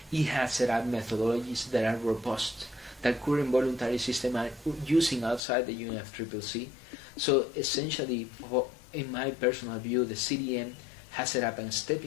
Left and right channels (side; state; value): right; drops out; at 5.4 s